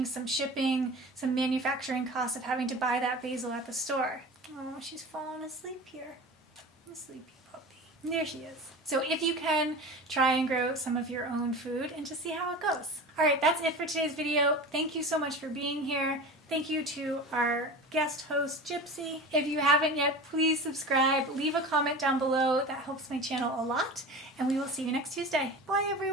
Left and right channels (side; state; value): both; normal; correlation 0.33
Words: some shipping, some manufacturing costs of having to buy that basil at the store. Oh, she's falling asleep here. A sleepy puppy. There she is. So if you can, try and grow some of your own food and just see how it goes. All right, that's it for today's video. Thank you so much for being here. Thank you to our guest host, Gypsy. If you haven't yet, please subscribe. Leave a comment down below. That helps my channel a lot. And we will see you next Tuesday. Bye,